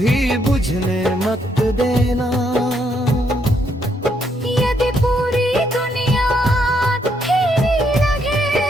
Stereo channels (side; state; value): both; normal; correlation 0.74